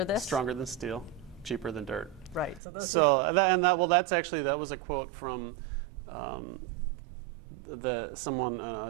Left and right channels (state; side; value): drops out; left; at 2.6 s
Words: this? Stronger than steel, cheaper than dirt. Right. So those. That was a quote from a